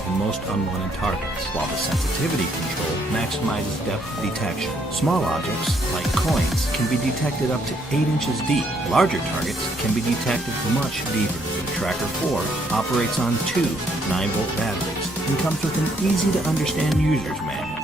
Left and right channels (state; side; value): normal; both; correlation 0.70